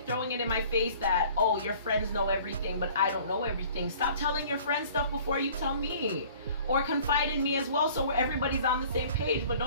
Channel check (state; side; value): inverted; both; correlation -0.51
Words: throwing it in my face that, oh, your friends know everything, but I don't know everything. Stop telling your friends stuff before you tell me. Or confide in me as well, so everybody's on the same page. But